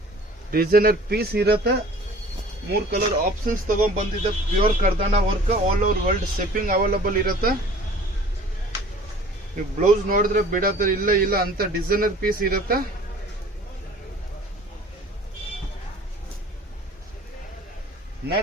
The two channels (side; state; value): both; normal; correlation 0.48